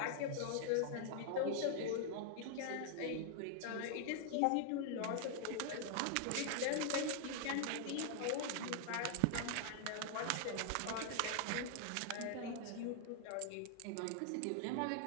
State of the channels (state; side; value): different; both; correlation 0.00